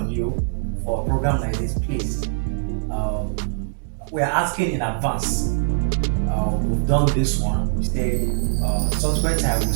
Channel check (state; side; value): silent; left; digital silence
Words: you for a program like this, please. We are asking in advance. We've done this one. We say subsequent time we'll